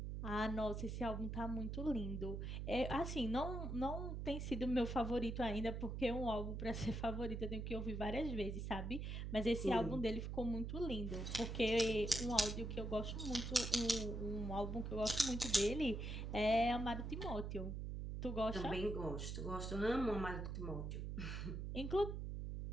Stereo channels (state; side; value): noise; right; hum, 4 dB below the sound